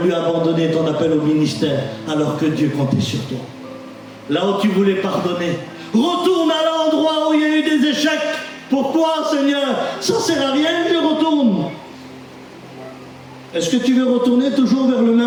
abandonner ton appel au ministère alors que Dieu comptait sur toi. là où tu voulais pardonner. Retourne à l'endroit où il y a eu des échecs. Pourquoi, Seigneur? Ça ne sert à rien que je retourne. Est-ce que tu veux retourner toujours vers le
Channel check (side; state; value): both; identical; correlation 1.00